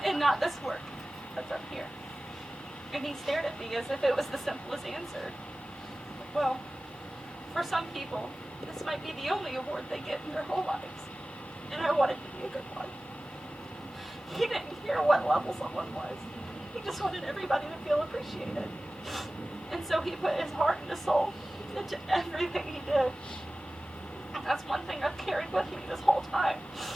and not this work that's up here?" And he stared at me as if it was the simplest answer. Well, for some people, this might be the only award they get in their whole lives, and I wanted to be a good one. He didn't care what level someone was. He just wanted everybody to feel appreciated. And so he put his heart and his soul into everything he did. And that's one thing I've carried with me this whole time.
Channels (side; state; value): both; normal; correlation 0.96